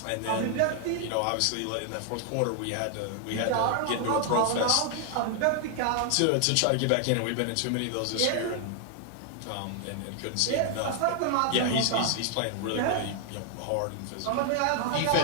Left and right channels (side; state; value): both; different; correlation 0.00